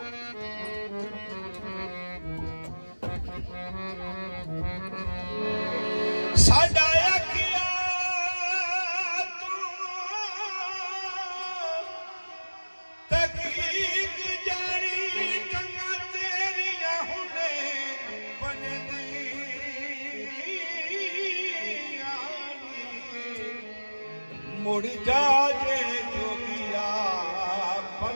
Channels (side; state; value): both; inverted; correlation -1.00